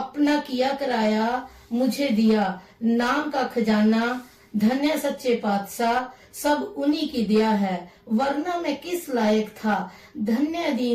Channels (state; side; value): identical; both; correlation 1.00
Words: किया कराया मुझे दिया। नाम का खजाना धन्य सच्चे पातशाह, सब उन्हीं की दया है, वरना मैं किस लायक था। धन्य